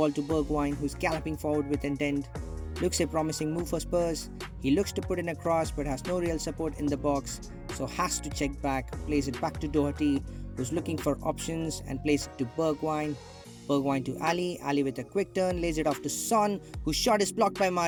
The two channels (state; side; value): identical; both; correlation 1.00